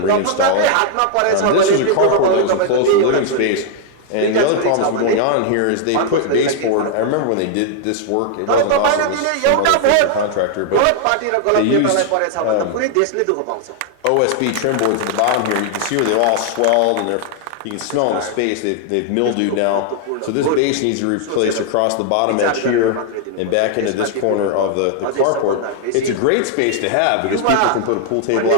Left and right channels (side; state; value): both; different; correlation 0.00